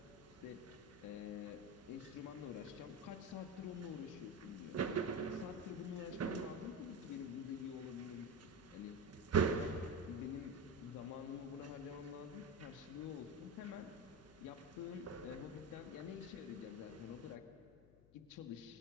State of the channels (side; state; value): left; noise; hum, 22 dB below the sound